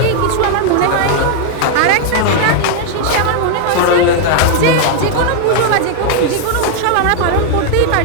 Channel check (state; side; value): different; both; correlation 0.00